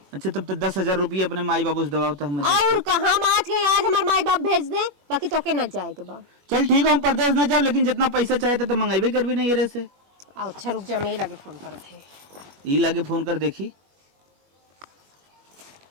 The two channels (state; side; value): late; left; 21 ms